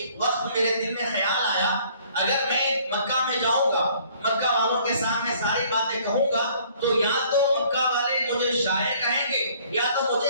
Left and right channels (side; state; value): both; inverted; correlation -0.58